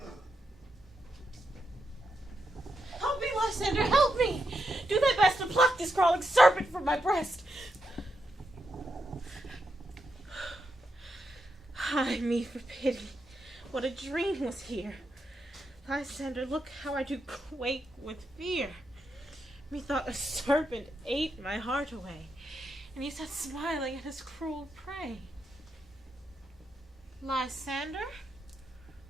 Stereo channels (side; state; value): both; normal; correlation 0.84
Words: Help me, Lysander, help me! Do thy best to pluck this crawling serpent from my breast. Ay me for pity. What a dream was here. Lysander, look how I do quake with fear. Methought a serpent ate my heart away, and he sat smiling at his cruel prey. Lysander?